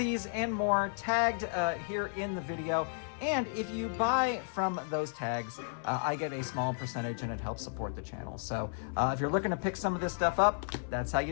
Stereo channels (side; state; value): right; silent; 56 dB below the other